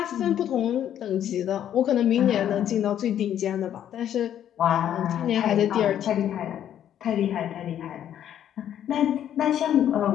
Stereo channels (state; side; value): quieter; right; 10.4 dB